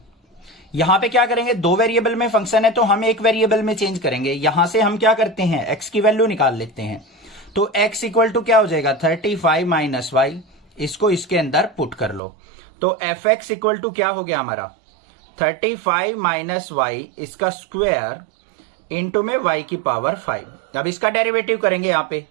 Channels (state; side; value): drops out; left; at 12.2 s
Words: यहां पे क्या करेंगे, दो वेरिएबल में फंक्शन है तो हम एक वेरिएबल में चेंज करेंगे। यहां से हम क्या करते हैं, x की वैल्यू निकाल लेते हैं। तो x इक्वल टू क्या हो जाएगा, 35 माइनस वाई। इसको इसके अंदर पुट कर लो तो एफ एक्स इक्वल टू क्या हो गया हमारा, 35 माइनस वाई इसका स्क्वायर इंटू में y की पावर 5। अब इसका डेरिवेटिव करेंगे यहाँ पे